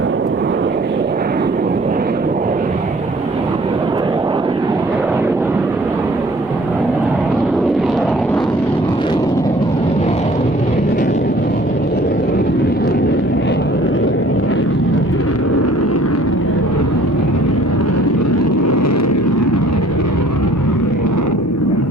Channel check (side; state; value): both; normal; correlation 0.54